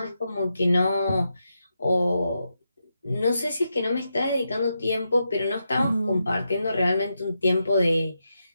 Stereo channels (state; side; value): inverted; both; correlation -0.86